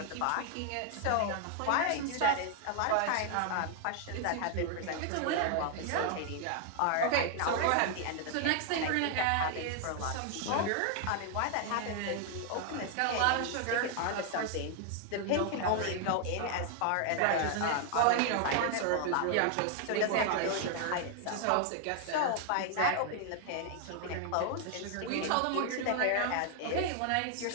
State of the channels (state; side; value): different; both; correlation 0.00